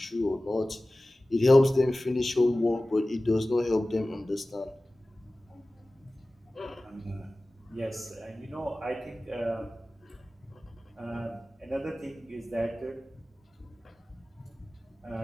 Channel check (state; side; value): normal; both; correlation 0.97